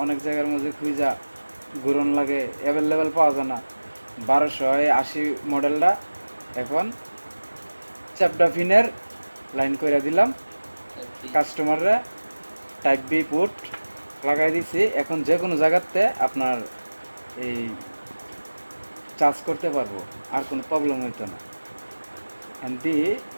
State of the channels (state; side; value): inverted; both; correlation -1.00